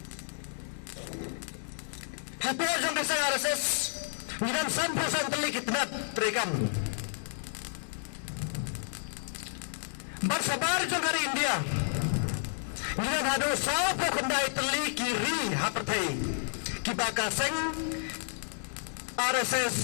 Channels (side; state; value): right; silent; digital silence